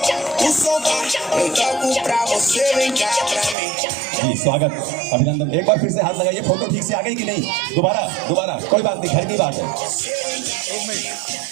जी, स्वागत, अभिनंदन। एक बार फिर से हाथ लगाइए। फोटो ठीक से आ गई कि नहीं? दोबारा कोई बात नहीं, घर की बात है।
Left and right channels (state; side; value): drops out; left; at 3.6 s